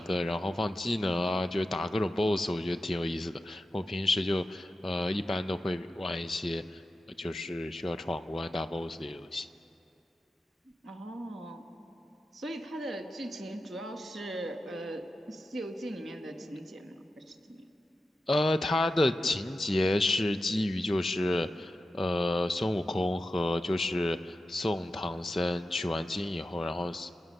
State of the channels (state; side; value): normal; both; correlation 0.92